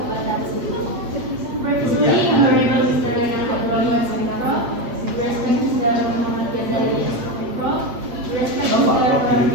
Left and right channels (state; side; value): late; left; 8.5 ms